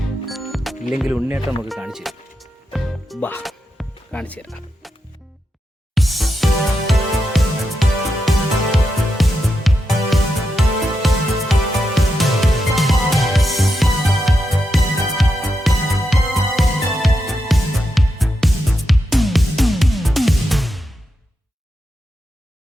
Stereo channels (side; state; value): both; normal; correlation 0.86